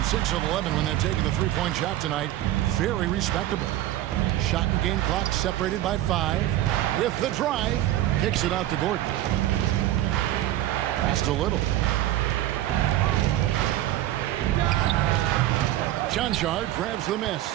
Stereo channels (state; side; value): quieter; left; 14.1 dB